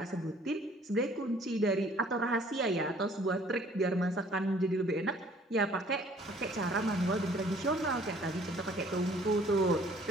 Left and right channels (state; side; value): normal; both; correlation 0.57